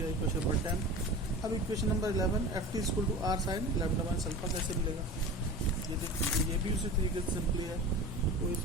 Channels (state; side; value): normal; both; correlation 0.34